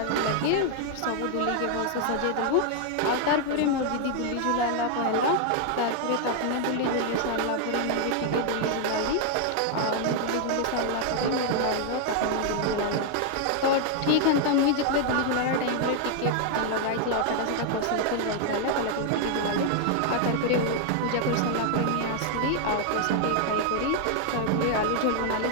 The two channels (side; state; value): both; different; correlation 0.00